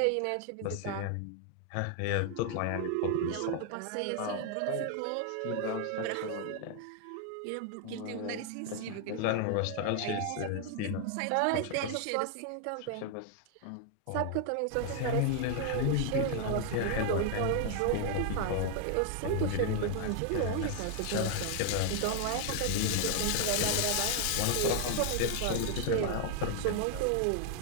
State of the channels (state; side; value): different; both; correlation 0.00